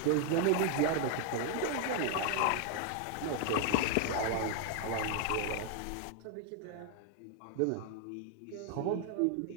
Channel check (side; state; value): both; different; correlation 0.01